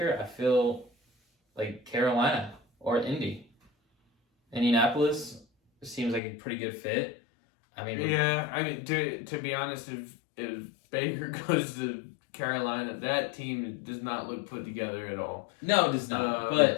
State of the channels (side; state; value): right; drops out; at 6.2 s